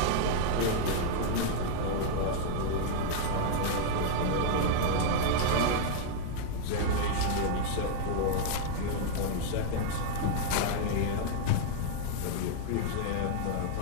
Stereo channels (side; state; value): both; different; correlation -0.01